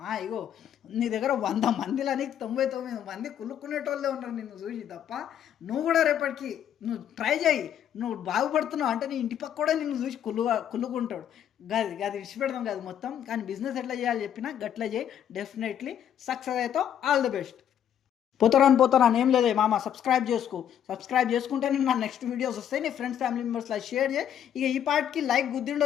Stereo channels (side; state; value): right; quieter; 9.7 dB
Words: ఇగో నీ దగ్గర 100 మందిలని 99 మంది కుళ్ళుకునేటోళ్ళే ఉన్నారు నిన్ను చూసి తప్ప. నువ్వు కూడా రేపటికి నువ్వు ట్రై చేయి, నువ్వు బాగుపడుతున్నావు అంటే నీ ఇంటి పక్క కూడా నిన్ను చూసి కుళ్ళుకుంటాడు. గది విడిచిపెడదాం కాదు మొత్తం. కానీ బిజినెస్ ఎట్లా చేయాలి చెప్పినా గట్లా చేయి, డెఫినెట్లీ సక్సెస్ అవుతావు. All the best. పోతారాని ఏం లేదే మామ, సబ్స్క్రైబ్ చేసుకుంటే నీకు నా నెక్స్ట్ వీడియోస్ వస్తాయి. నీ ఫ్రెండ్స్ ఫ్యామిలీ మెంబర్స్లో షేర్ చేయి. ఇక ఈ పార్ట్కి లైక్